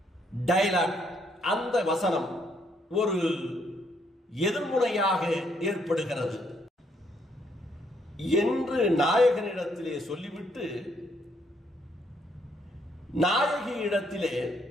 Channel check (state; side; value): normal; both; correlation 0.71